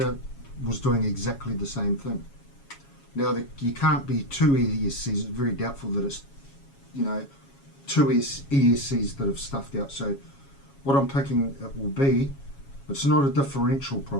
was doing exactly the same thing. Now you can't be two ESCs, it's very doubtful that it's two ESCs that have stuffed out. So what I'm picking it will be, it's not a differential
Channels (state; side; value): late; right; 7.2 ms